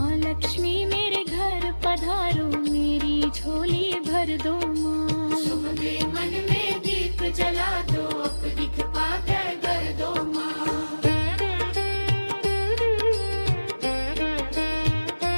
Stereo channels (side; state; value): both; inverted; correlation -1.00